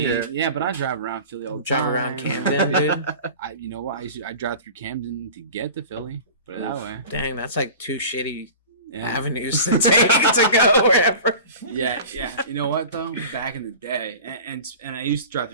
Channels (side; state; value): both; inverted; correlation -0.38